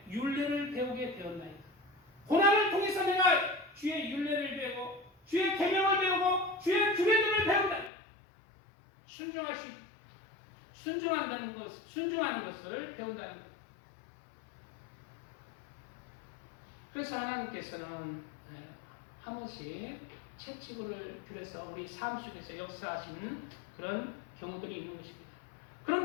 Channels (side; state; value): right; drops out; at 7.9 s